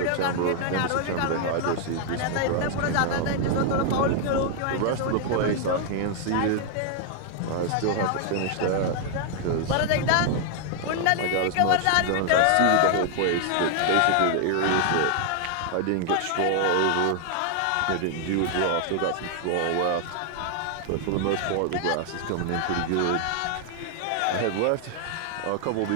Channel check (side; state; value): both; different; correlation 0.00